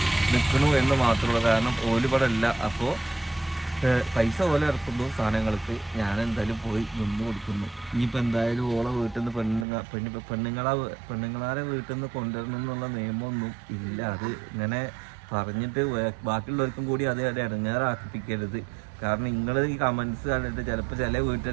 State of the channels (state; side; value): drops out; left; at 9.7 s